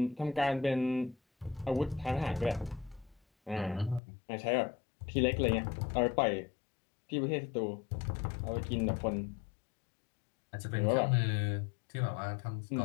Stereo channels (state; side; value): drops out; right; at 4.0 s